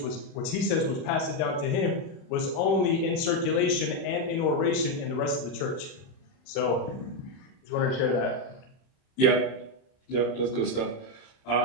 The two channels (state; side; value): late; right; 30 ms